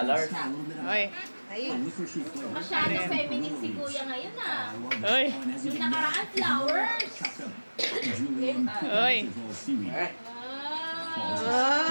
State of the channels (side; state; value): both; inverted; correlation -1.00